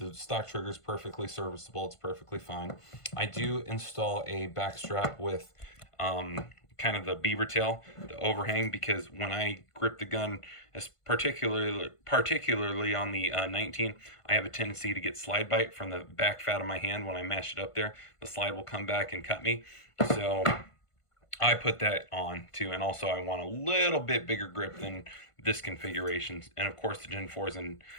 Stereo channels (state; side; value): late; right; 1.5 ms